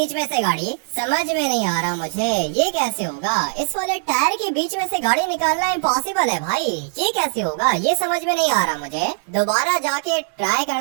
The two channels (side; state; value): left; silent; digital silence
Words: में से गाड़ी? समझ में नहीं आ रहा मुझे, ये कैसे होगा? इस वाले टायर के बीच में से गाड़ी निकालना इम्पॉसिबल है भाई, ये कैसे होगा? ये समझ में नहीं आ रहा मुझे। दोबारा जाके ट्राई